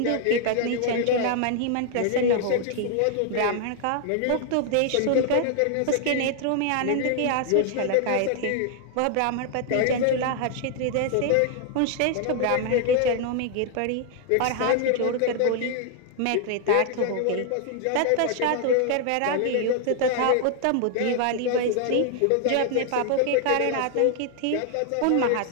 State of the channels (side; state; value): both; different; correlation 0.00